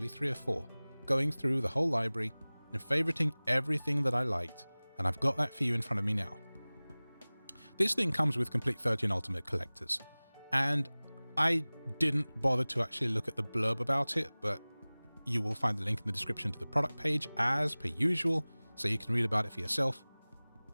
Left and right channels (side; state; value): both; inverted; correlation -1.00